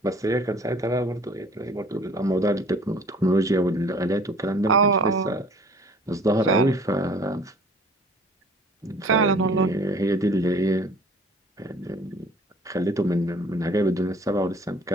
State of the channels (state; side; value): normal; both; correlation 0.51